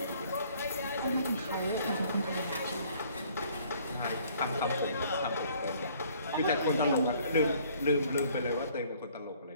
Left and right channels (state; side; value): inverted; both; correlation -0.59